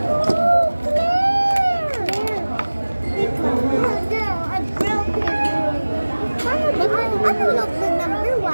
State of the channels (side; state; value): both; inverted; correlation -1.00